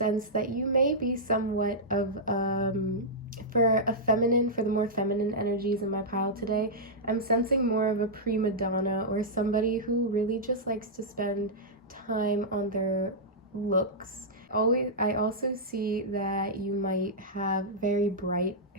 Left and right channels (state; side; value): normal; both; correlation -0.10